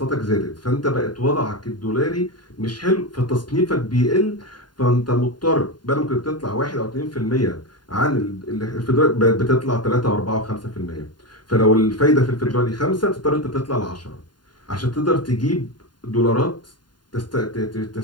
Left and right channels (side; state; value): right; late; 0.70 ms